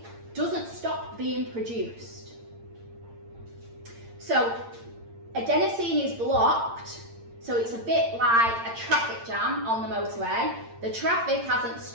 doesn't stop being produced. So adenosine is blocked, so it's a bit like a traffic jam on the motorway. The traffic hasn't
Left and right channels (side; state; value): left; late; 8.8 ms